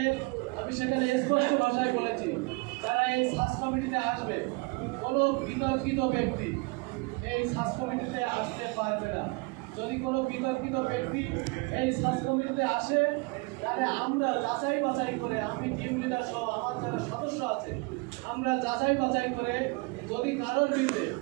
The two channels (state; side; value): quieter; left; 27.2 dB